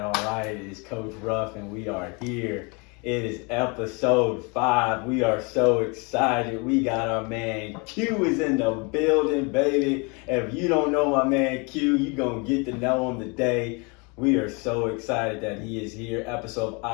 It is Coach Ruff, and we are here. It is episode 5. We are so excited. We got our man Q is in the building, baby. If you don't know my man Q, you're going to get to know him today. We are so excited that he is here. Episode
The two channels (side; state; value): right; quieter; 30.8 dB